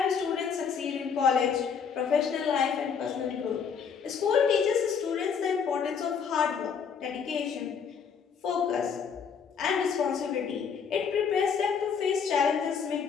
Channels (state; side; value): quieter; right; 6.6 dB